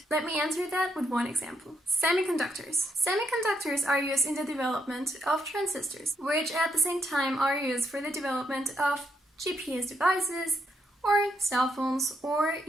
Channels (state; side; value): normal; both; correlation 0.77